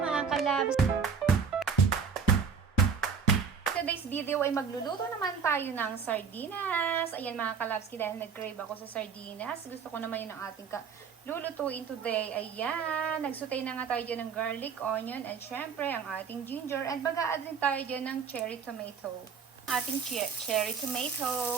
kalabs. Today's video ay magluluto naman tayo ng sardinas. Ayan mga kalabski, dahil nag-crave ako sa sardinas. Gusto ko naman yun ang ating lulutuin today. Ayan, nagsutay na nga tayo dyan ng garlic, onion, and syempre ang ating ginger. And baga-add din tayo dyan ng cherry tomato. Ating cherry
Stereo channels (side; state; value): left; quieter; 6.3 dB